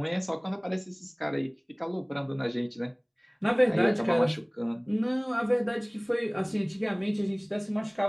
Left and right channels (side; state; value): both; identical; correlation 1.00